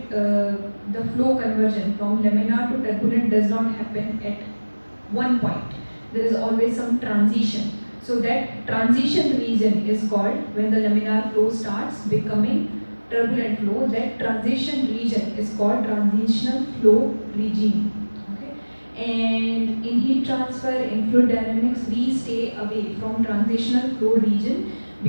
the flow conversion from laminar to turbulent does not happen at one point. There is always some transition. So that transition region is called, when the laminar flow starts becoming turbulent flow, that transition region is called transitional flow regime. Okay? And in heat transfer, in fluid dynamics, we stay away from transitional flow region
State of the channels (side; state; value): both; inverted; correlation -1.00